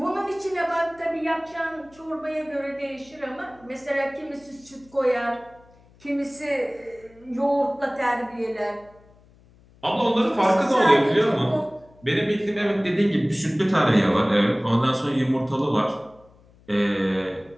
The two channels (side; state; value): left; noise; hum, 28 dB below the sound